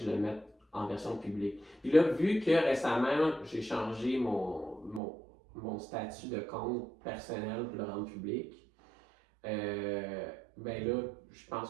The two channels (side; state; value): left; drops out; at 5.0 s